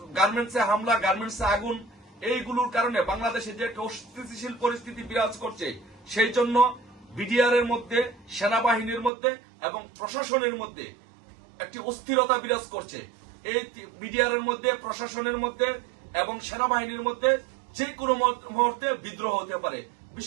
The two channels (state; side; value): drops out; left; at 9.1 s